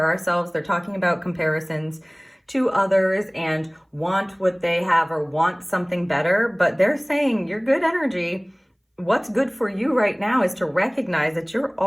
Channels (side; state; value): both; identical; correlation 1.00